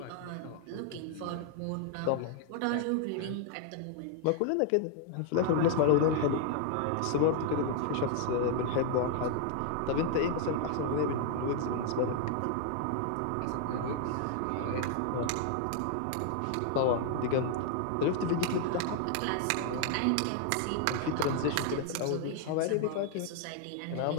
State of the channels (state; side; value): different; both; correlation 0.00